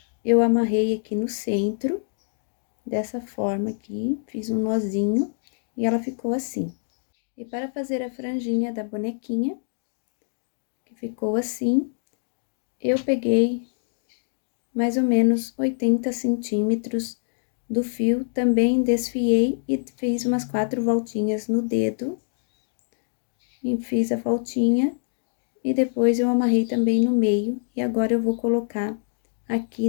eu amarrei aqui no centro, dessa forma aqui, fiz um nozinho e ela ficou assim. E para fazer a franjinha da bonequinha, que ficou assim, eu peguei mais ou menos 80 centímetros do fio, também desfiei e fiz umas 4 voltinhas no dedo. E fiz a voltinha e depois eu amarrei também no meio. E agora eu vou colocar aqui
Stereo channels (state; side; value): silent; right; digital silence